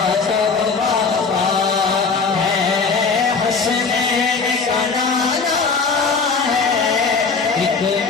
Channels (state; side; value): quieter; right; 4.8 dB